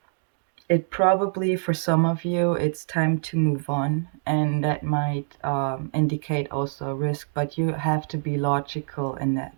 it probably, for some of you, it's time to move on, and that might indicate also a risk, but you have to be logical in that.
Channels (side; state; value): left; silent; digital silence